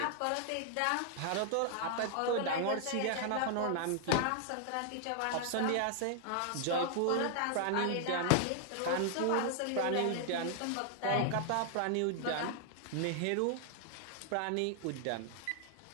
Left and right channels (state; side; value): different; both; correlation 0.00